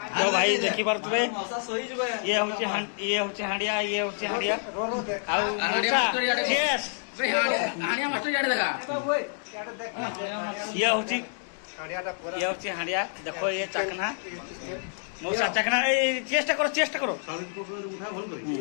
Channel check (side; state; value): right; silent; digital silence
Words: तो भाई देखि पारतबे ये होचे हांडिया आउ यस हानिया मास्टर जाडे देखा ये होचे हांडिया देखो ये चखना मौसा चखना ए चेष्टा करो